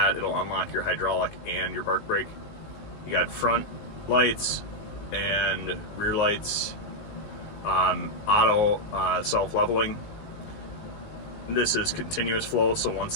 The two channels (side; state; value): right; late; 19 ms